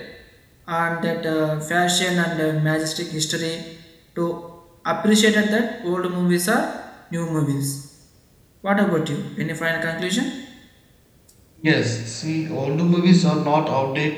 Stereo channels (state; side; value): identical; both; correlation 1.00